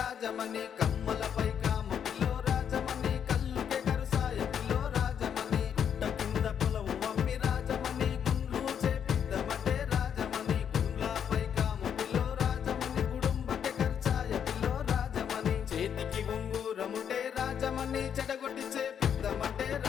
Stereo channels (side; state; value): right; quieter; 8.3 dB